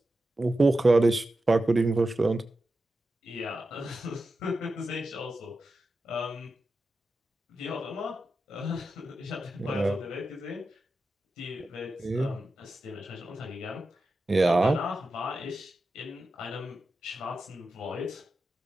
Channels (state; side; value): normal; both; correlation 0.91